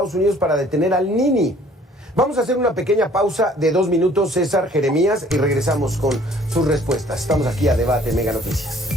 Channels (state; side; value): normal; both; correlation 0.56